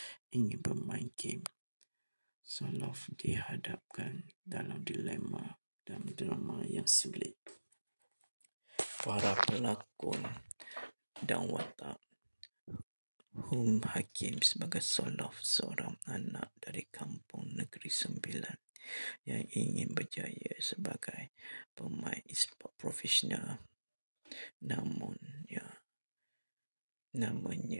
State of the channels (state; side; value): inverted; both; correlation -1.00